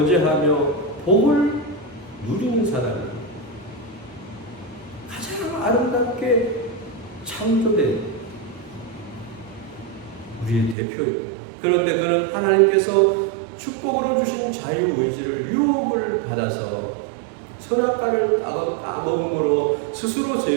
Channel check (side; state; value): left; drops out; at 10.8 s